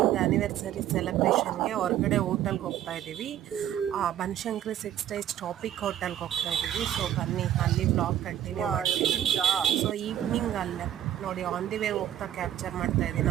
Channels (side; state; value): left; quieter; 11.3 dB